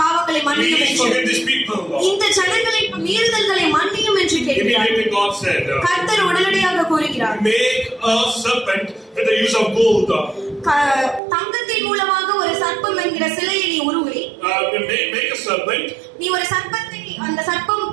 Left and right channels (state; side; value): drops out; left; at 11.2 s